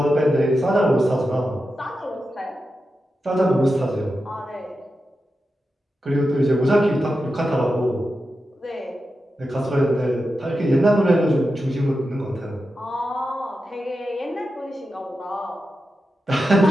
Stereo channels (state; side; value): normal; both; correlation 0.90